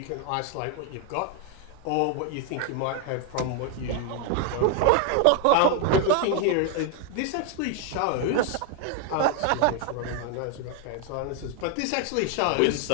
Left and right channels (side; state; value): both; different; correlation 0.01